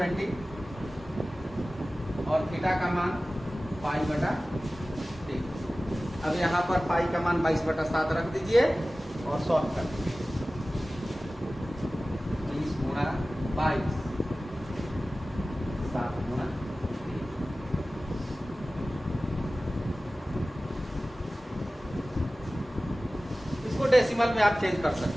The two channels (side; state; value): both; normal; correlation 0.97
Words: और थीटा का मान π/3। अब यहाँ पर पाई का मान 22/7 रख दीजिए और सॉल्व कर दीजिए। 20 गुणा 22, 7 गुणा 3। इसको डेसिमल में आप चेंज कर